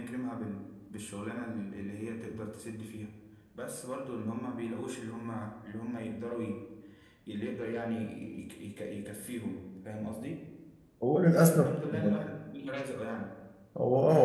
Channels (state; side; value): identical; both; correlation 1.00